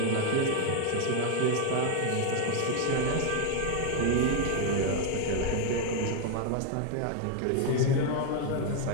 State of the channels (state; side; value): different; both; correlation 0.00